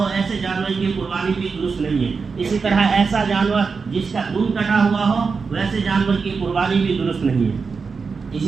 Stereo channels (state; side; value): quieter; left; 5.0 dB